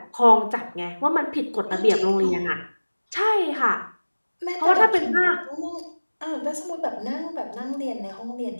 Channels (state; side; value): inverted; both; correlation -1.00